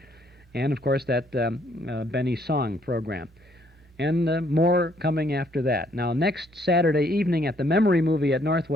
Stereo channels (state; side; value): normal; both; correlation 0.67